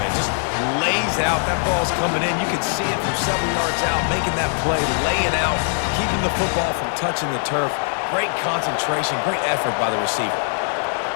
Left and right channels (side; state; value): right; silent; 57 dB below the other